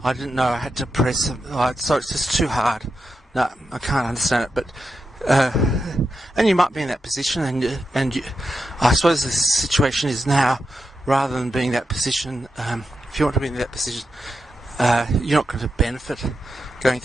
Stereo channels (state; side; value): normal; both; correlation 0.87